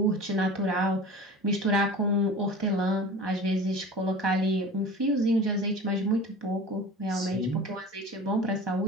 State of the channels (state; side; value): normal; both; correlation 0.37